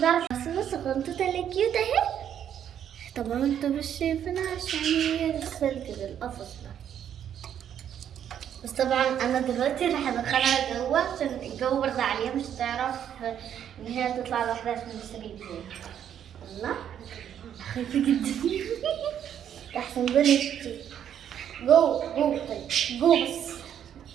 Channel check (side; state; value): left; quieter; 9.5 dB